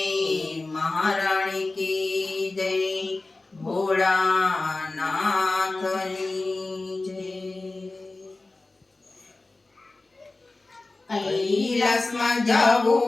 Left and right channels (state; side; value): quieter; right; 3.2 dB